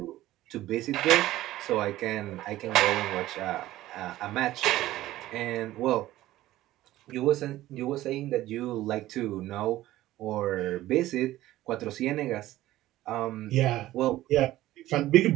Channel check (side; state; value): left; quieter; 15.4 dB